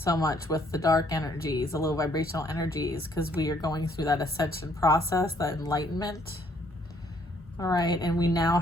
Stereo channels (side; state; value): both; normal; correlation 0.66